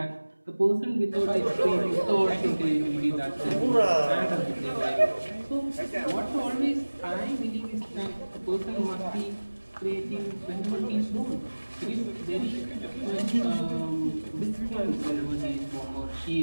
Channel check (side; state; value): both; inverted; correlation -1.00